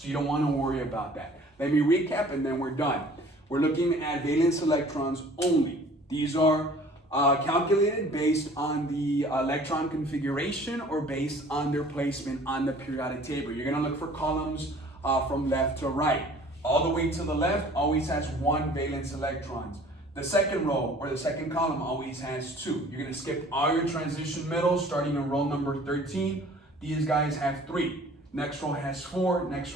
you don't want to worry about that. Let me recap and then we're done. We're looking at valence electrons only. These are calculated based on the electron configuration or based on their placement on the periodic table. You're going to look for columns from left to right. All the way to the left always has 1 valence electrons. The second row or the second column always has 2. You're going to skip all your transition middles starting in row number 13. These guys have 3. Next row has 4. Next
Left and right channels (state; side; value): normal; both; correlation 0.50